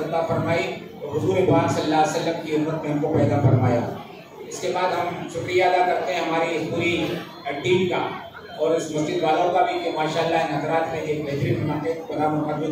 عطا فرمائی اور حضور پاک صلی اللہ علیہ وسلم کی امت میں ہم کو پیدا فرمایا. اس کے بعد ہم شکریہ ادا کرتے ہیں ہماری اس پوری ٹیم کا اور اس مسجد والوں کا بھی کہ ماشاءاللہ ان حضرات نے ایک بہترین بنا مقدمے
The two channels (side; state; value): both; identical; correlation 1.00